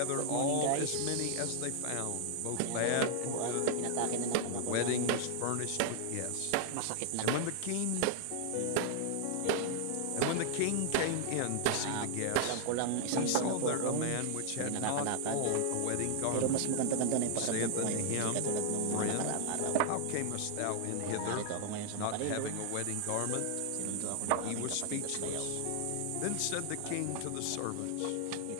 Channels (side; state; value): both; different; correlation -0.01